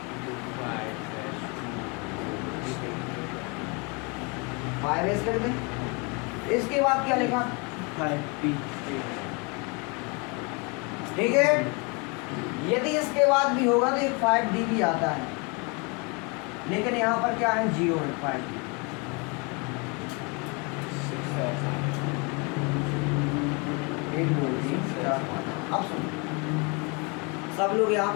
5s लिख दें। इसके बाद क्या लिखा? 5p, ठीक है। यदि इसके बाद भी होगा तो 5d भी आता है, लेकिन यहाँ पर क्या है? 0 है 5d। एक दो तीन चार पाँच। अब सुनो, सब लोग यहाँ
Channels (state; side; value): quieter; right; 31.2 dB